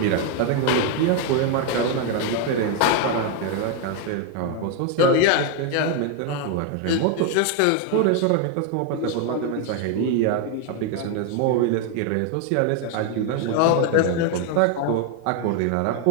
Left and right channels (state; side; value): different; both; correlation 0.01